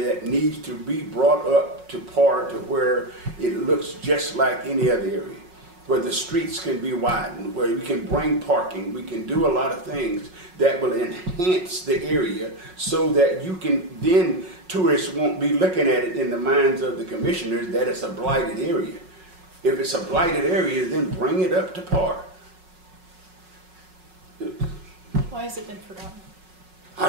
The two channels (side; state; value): left; late; 5.4 ms